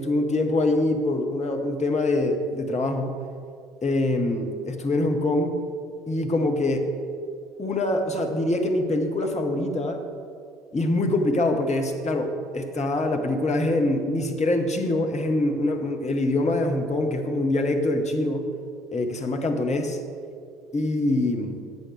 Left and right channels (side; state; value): both; normal; correlation 0.69